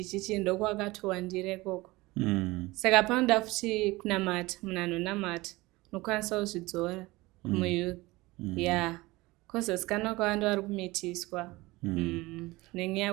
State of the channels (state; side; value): quieter; left; 21.0 dB